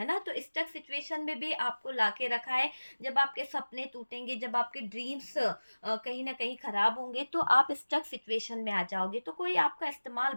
ना? तो स्टक सिचुएशन में भी आपको लाके रखा है। जब आपके सपने टूटेंगे, जब आपके ड्रीम्स कहीं न कहीं खराब होंगे, तो आप स्टक सिचुएशन में आ जाओगे। तो कोई आपका इस्तेमाल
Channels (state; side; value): inverted; both; correlation -1.00